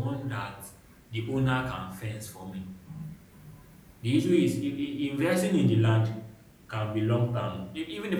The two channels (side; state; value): both; identical; correlation 1.00